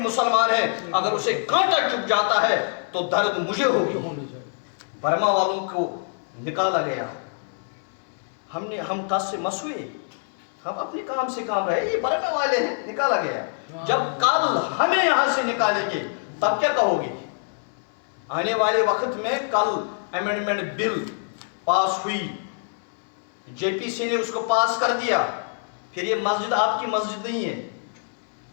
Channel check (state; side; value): silent; right; 62 dB below the other